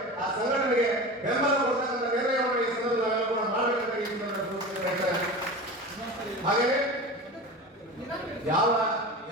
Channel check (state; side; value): normal; both; correlation 0.30